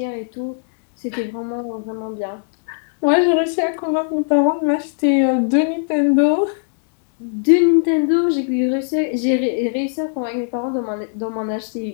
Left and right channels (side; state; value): right; silent; digital silence